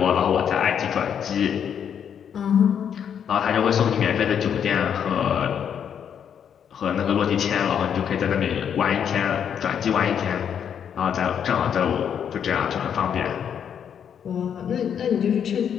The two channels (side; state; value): right; quieter; 8.3 dB